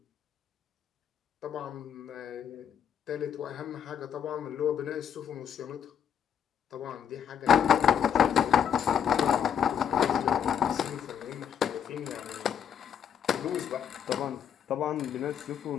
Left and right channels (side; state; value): right; quieter; 8.6 dB